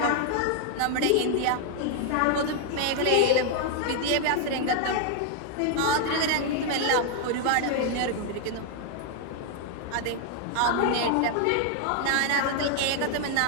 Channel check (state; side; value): different; both; correlation 0.00